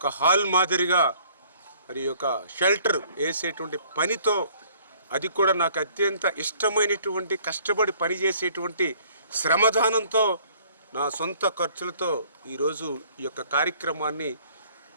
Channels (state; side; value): inverted; both; correlation -0.58